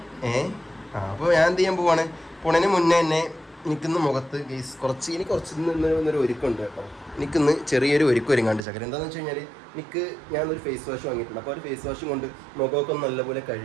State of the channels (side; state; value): left; drops out; at 8.7 s